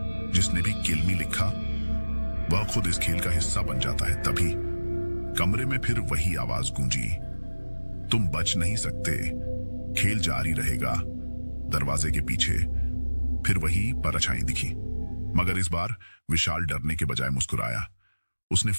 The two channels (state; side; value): inverted; both; correlation -1.00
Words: जिसने भी किल मी लिखा वह खुद इस खेल का हिस्सा बन जाता है। तभी कमरे में फिर वही आवाज गूंजी, तुम बच नहीं सकते, खेल जारी रहेगा। दरवाजे के पीछे फिर वही परछाई दिखी, मगर इस बार विशाल डरने के बजाय मुस्कुराया। उसने